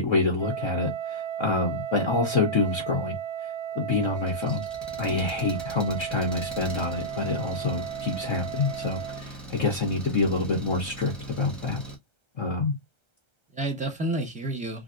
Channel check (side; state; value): right; late; 1.3 ms